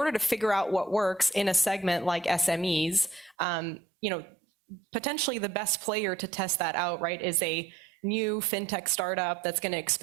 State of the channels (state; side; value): drops out; left; at 3.4 s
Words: to figure out what works in a segment like SMEs, you know, potentially the best player to test that out, right, is a new fintech startup that's going to